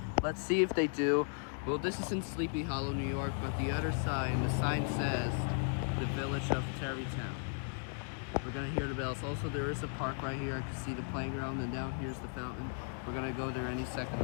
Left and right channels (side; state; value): right; silent; 54 dB below the other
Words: let's see if they do. Well, this is in Sleepy Hollow, New York, but the other sign, the sign says the Village of Tarrytown. We're gonna hear the bells. Also, there is a park right here. I can see the playground, and down here's the fountain. We're gonna go there any second